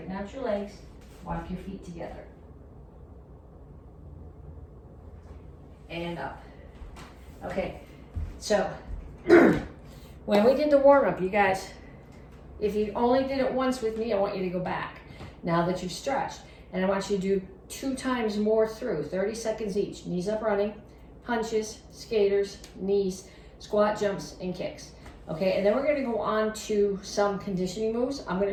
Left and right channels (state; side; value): identical; both; correlation 1.00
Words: out your legs, walk your feet together. And up. Okay, so when we did the warm-up, you guys, if you only did it once with me, I want you to go back now that you've stretched. And I want you to do 2 times more through, 30 seconds each. Knees up running, punches, skaters, knees, squat jumps, and kicks. Okay, and then we're going to go on to some conditioning moves. I'm going